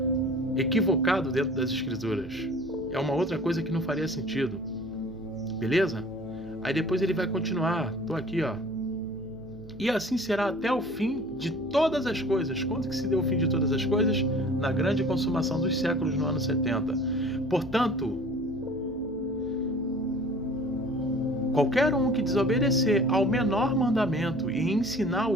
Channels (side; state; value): right; noise; hum, 19 dB below the sound